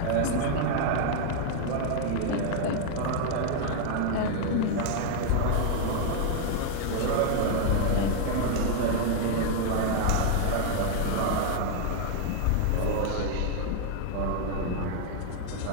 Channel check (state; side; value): different; both; correlation 0.00